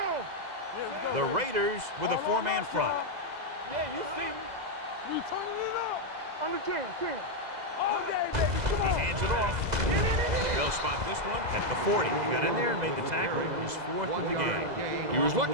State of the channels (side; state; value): left; late; 2.0 ms